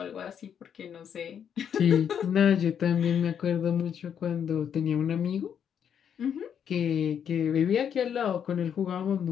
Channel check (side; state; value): right; quieter; 8.3 dB